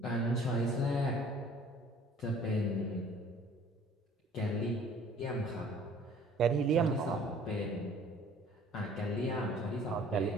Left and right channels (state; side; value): normal; both; correlation 0.52